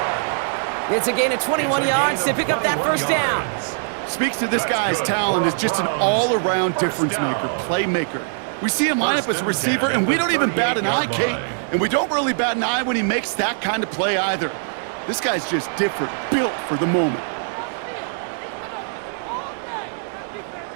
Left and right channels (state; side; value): silent; left; digital silence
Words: It's a gain of 21 yards to pick up that first down. Speaks to this guy's talent as just an all-around difference maker, playmaker. We see him line up as a receiver, and we don't even bat an eye, Kate. And we don't really bat an eye when he makes that kind of play either. This guy's just different, built for the moment.